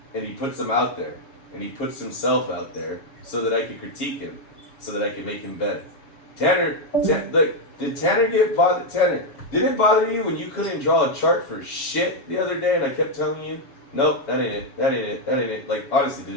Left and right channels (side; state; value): right; late; 7.2 ms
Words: and he puts them out there, and he puts himself out there so that I can critique him, so that I can make him better. Did Tanner get bothered? Tanner, did it bother you when you couldn't draw a chart for shit the other day, and I kept telling you, nope, that ain't it, that ain't it, that ain't it. Like, honestly, did